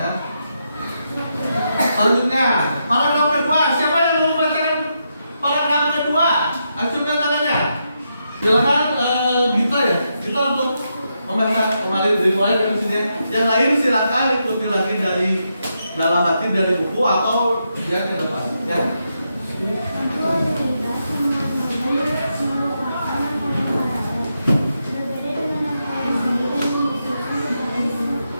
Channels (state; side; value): inverted; both; correlation -0.83